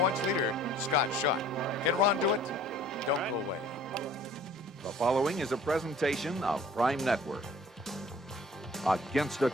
leader, Scott Schott. Can Ron do it? Don't go away. The following is a presentation of Prime Network. Against a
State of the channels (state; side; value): normal; both; correlation 0.51